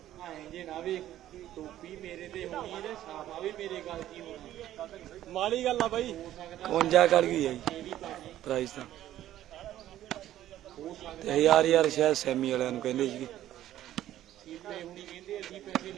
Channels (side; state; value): left; quieter; 12.9 dB